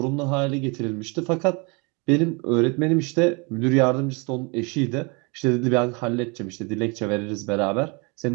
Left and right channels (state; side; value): quieter; left; 30.2 dB